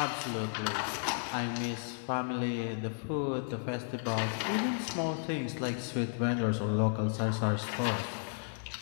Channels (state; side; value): silent; right; 55 dB below the other